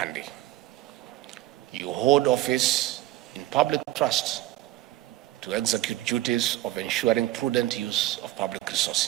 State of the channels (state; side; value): quieter; left; 16.0 dB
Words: You hold office in public trust to execute duties of ensuring prudent use of public